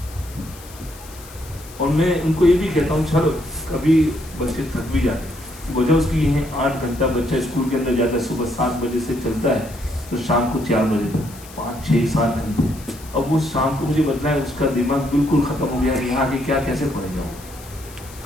اور میں ان کو یہ بھی کہتا ہوں چلو کبھی بچے تھک بھی جاتے ہیں, وجہ اس کی یہ ہے 8 گھنٹہ بچہ اسکول کے اندر جاتا ہے, صبح 7 بجے سے چلتا ہے تو شام کو 4 بجے تک 5 6 7 گھنٹے. اب وہ شام کو مجھے بتلا ہے اس کا دماغ بالکل ختم ہو گیا ہے, یہاں کے کیا کیسے پڑھے گا.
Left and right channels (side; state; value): left; noise; hiss, 19 dB below the sound